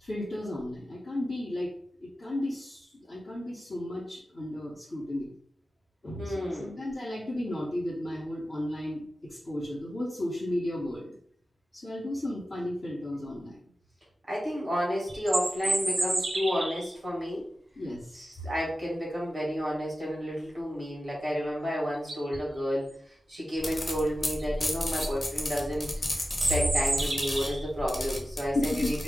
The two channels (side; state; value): both; normal; correlation 0.93